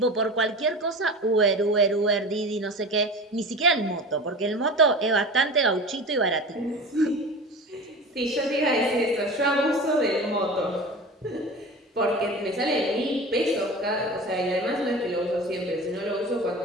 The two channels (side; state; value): both; normal; correlation 0.33